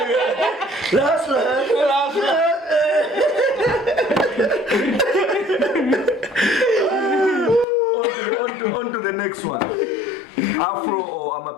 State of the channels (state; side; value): drops out; right; at 7.7 s